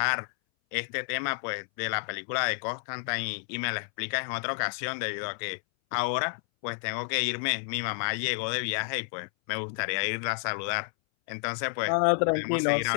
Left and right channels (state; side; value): silent; right; 58 dB below the other